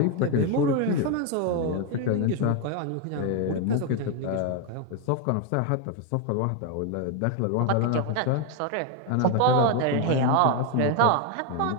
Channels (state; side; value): different; both; correlation 0.01